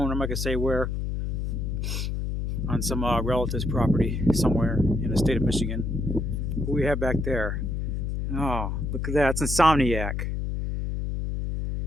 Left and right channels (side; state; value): left; noise; hum, 1 dB below the sound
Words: I'm not gonna say where. On some relative's property somewhere in the state of Michigan. Who we have back there? Oh, look at that! It's Insomniac.